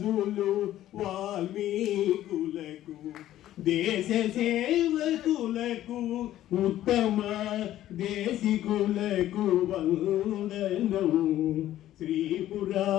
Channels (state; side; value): quieter; right; 13.2 dB